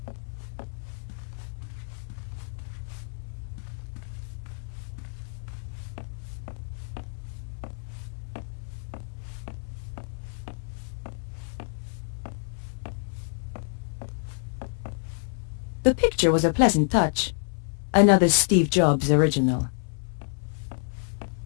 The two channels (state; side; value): silent; right; 56 dB below the other